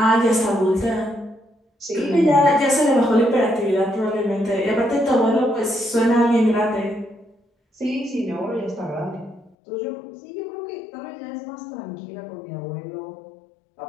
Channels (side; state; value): right; drops out; at 9.6 s